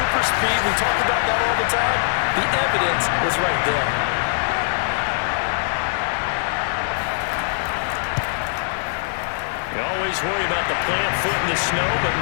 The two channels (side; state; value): right; silent; 56 dB below the other